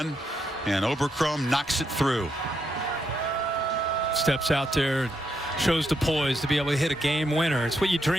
and Obercrom knocks it through. Steps out there, shows the poise to be able to hit a game winner. It's what you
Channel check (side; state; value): both; normal; correlation 0.79